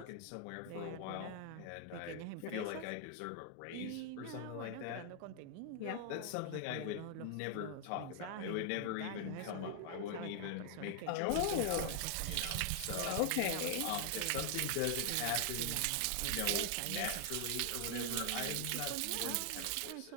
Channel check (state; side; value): different; both; correlation 0.00